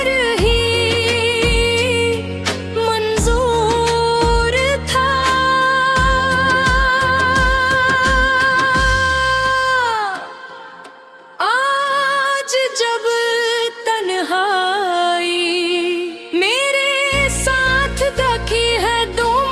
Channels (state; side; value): identical; both; correlation 1.00